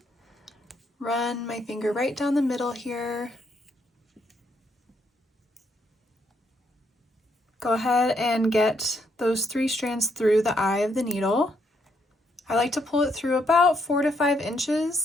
Run my finger right down the middle here. Go ahead and get those 3 strands through the eye of the needle. I like to pull it through about 4 to 5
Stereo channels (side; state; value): both; normal; correlation 0.75